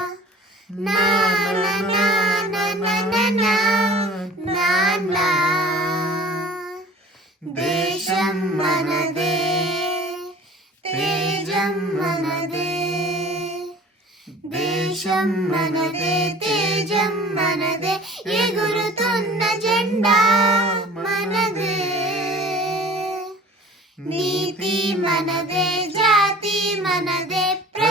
నానా దేశం మనదే తేజం మనదే దేశం మనదే తేజం మనదే ఎగురుతున్న జెండా మనదే నీతి మనదే జాతి మనదే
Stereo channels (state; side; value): normal; both; correlation 0.45